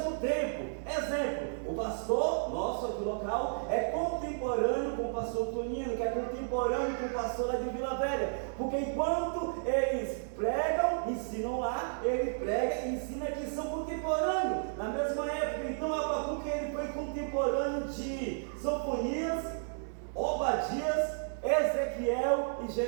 tempo. Exemplo, o pastor nosso aqui local é contemporâneo com o pastor Tonino, que é contemporâneo com o pastor lá de Vila Velha, porque enquanto eles pregam, ensinam lá, ele prega e ensina que são contemporâneos, na mesma época. Então Abacuque ele foi contemporâneo de Sofonias, Obadias, Ezequiel e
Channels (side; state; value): left; silent; digital silence